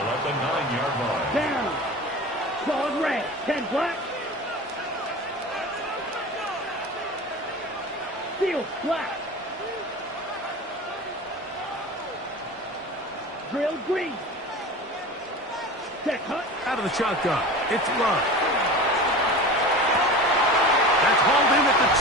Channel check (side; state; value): both; normal; correlation 0.33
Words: at the 9-yard line. Down. Solid red. 10 black. Steel black. Drill green. Set hut. Out of the shotgun, it's Love. That's hauled in at the